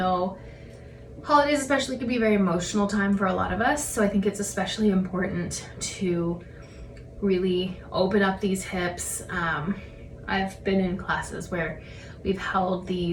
holidays especially can be a very emotional time for a lot of us, so I think it's especially important to really open up these hips. I've been in classes where we've held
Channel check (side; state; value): both; identical; correlation 1.00